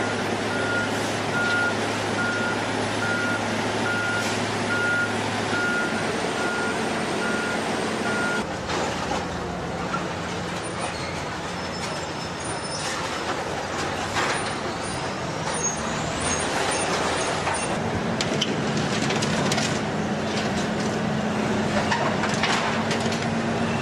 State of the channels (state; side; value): identical; both; correlation 1.00